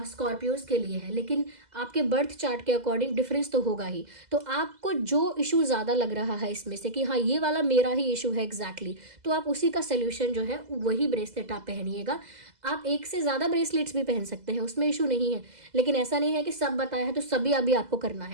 स्कॉर्पियोज के लिए है, लेकिन आपके बर्थ चार्ट के अकॉर्डिंग डिफरेंस तो होगा ही। तो आपको जो इशू ज़्यादा लग रहा है इसमें से कि हाँ ये वाला मेरा ही इशू है एग्जैक्टली, तो आप उसी का सोल्यूशन जो है वही ब्रेसलेट आप पहनिएगा। आप एक से ज़्यादा ब्रेसलेट्स भी पहन सकते हैं, उसमें इशू नहीं है, लेकिन ऐसा नहीं है कि सब बताया है तो सभी अभी आपको करना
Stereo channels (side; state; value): left; late; 2.0 ms